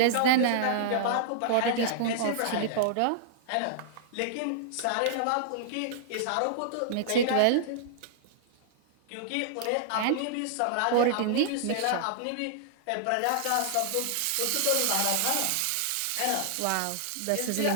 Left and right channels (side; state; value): both; different; correlation -0.01